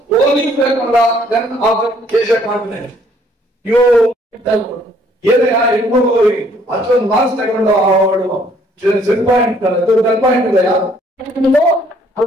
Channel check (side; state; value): both; normal; correlation 0.63